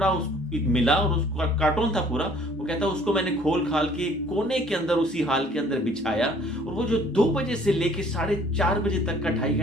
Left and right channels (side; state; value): both; normal; correlation 0.56